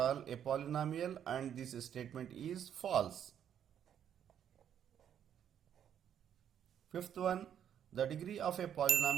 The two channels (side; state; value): left; quieter; 9.3 dB